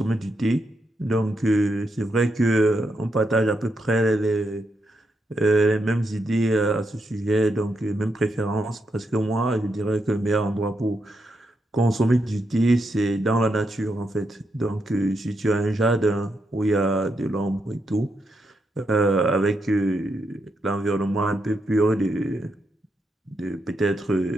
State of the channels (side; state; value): both; normal; correlation 0.82